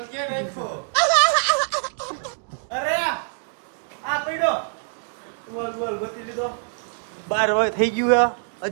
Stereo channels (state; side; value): silent; left; digital silence